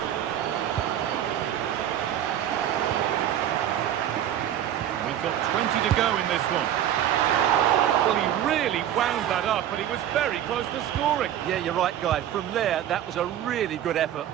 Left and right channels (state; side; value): quieter; left; 11.0 dB